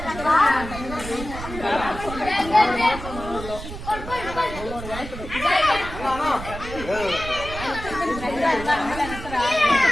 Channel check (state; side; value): noise; right; rumble, 10 dB below the sound